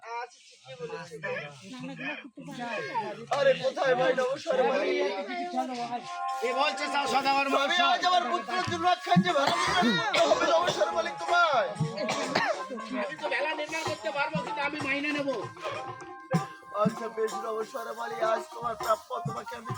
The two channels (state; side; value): identical; both; correlation 1.00